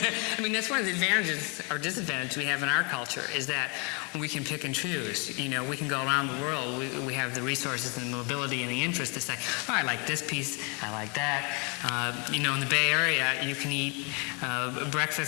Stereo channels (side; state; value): right; quieter; 33.1 dB